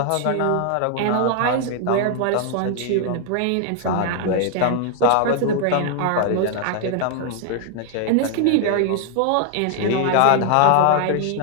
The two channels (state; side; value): different; both; correlation 0.00